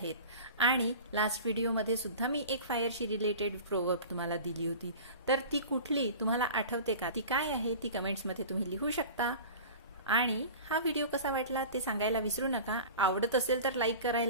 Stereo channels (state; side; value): inverted; both; correlation -0.37